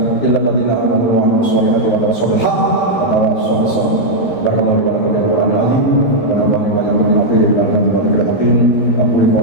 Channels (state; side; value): late; right; 13 ms